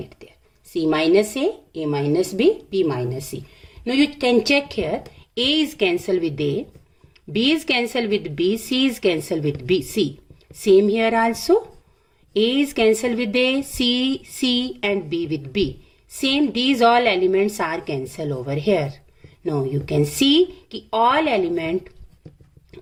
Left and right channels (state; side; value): identical; both; correlation 1.00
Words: there. C minus A minus B, B minus C. Now you can check here. A is cancelled with A B is cancelled with B, C is cancelled with B, C. Same here also. A is cancelled with A, C and B with B. Same, these all elements are cancelled over here. Now you can see कि all element